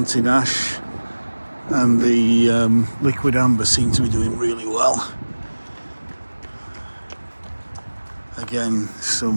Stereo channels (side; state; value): both; inverted; correlation -1.00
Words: ash and the liquid amber seem to be doing really well. Again,